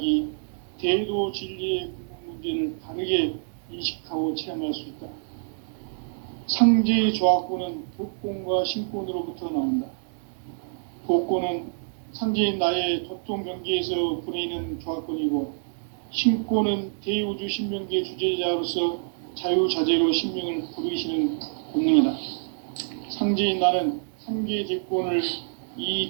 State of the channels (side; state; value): left; silent; digital silence